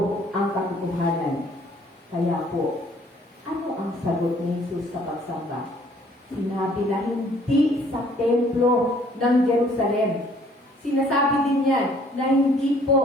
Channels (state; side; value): normal; both; correlation 0.59